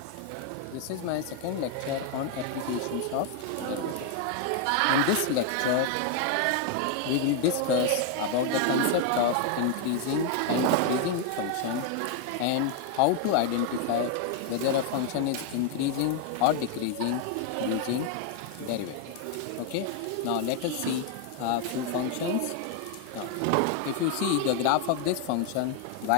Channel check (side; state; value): both; different; correlation 0.01